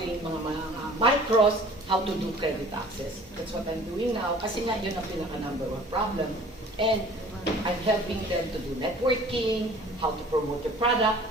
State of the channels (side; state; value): both; normal; correlation 0.48